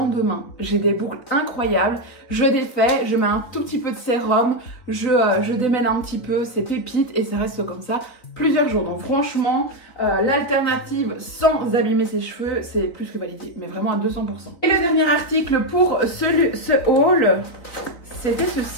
j'ai des boucles incroyables, je défais, je mets un tout petit peu de sérum, je démêle un petit peu, c'est pépite et ça reste comme ça plusieurs jours. Donc franchement l'alternative sans abîmer ses cheveux c'est plus que validé, mais vraiment à 200%. Et le dernier article pour ce haul, c'était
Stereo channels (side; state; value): right; late; 3.9 ms